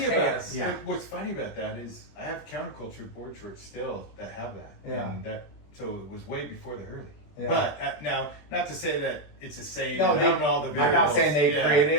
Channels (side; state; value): right; late; 21 ms